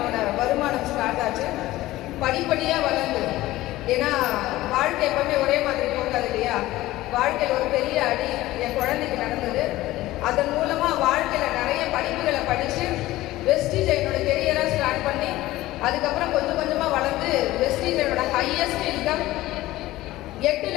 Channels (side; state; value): right; quieter; 16.9 dB